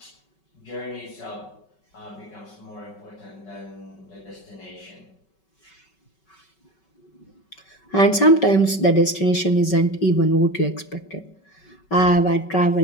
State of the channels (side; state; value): right; late; 5.3 ms